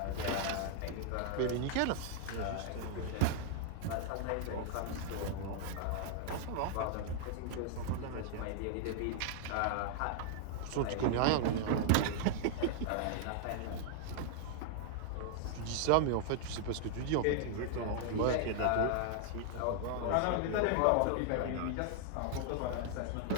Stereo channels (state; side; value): different; both; correlation 0.00